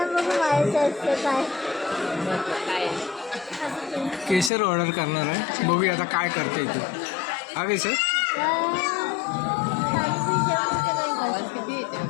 बघू व्हायचं असतं काय. काय केसर ऑर्डर करणार आहे, बघूया आता काय करते तू. हा केसर आवाज किती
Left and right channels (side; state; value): right; drops out; at 4.5 s